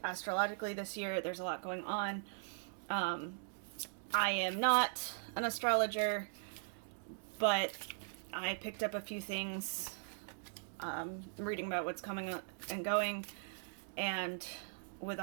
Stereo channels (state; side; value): silent; left; digital silence